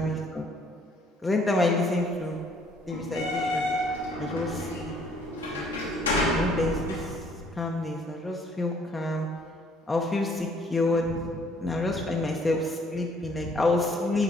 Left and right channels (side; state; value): both; normal; correlation 0.62